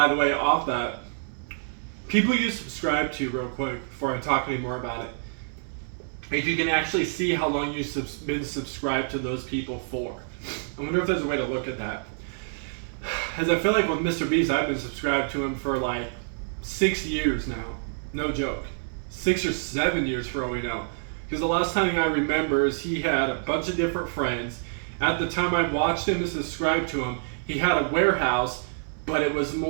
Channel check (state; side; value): silent; left; digital silence